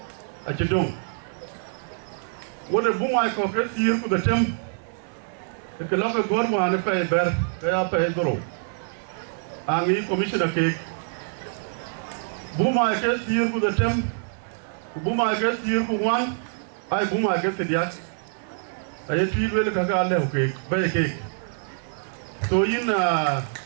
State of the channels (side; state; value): left; silent; digital silence